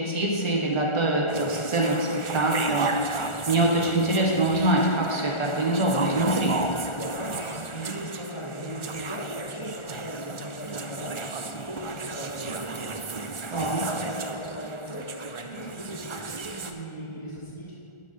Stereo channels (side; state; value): right; late; 1.4 ms